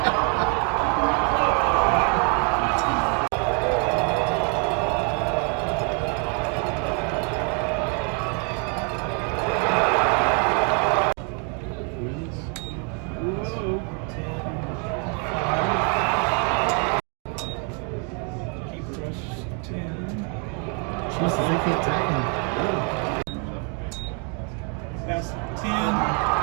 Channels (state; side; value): quieter; left; 36.9 dB